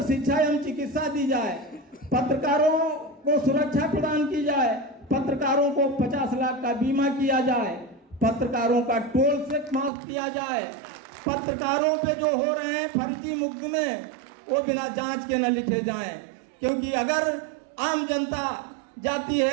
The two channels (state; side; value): drops out; left; at 9.9 s